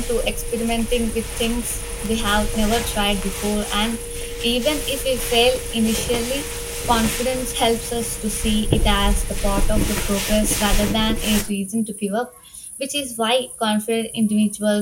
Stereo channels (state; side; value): identical; both; correlation 1.00